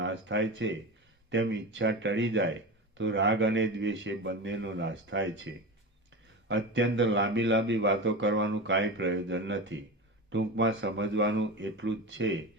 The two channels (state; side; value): normal; both; correlation 0.25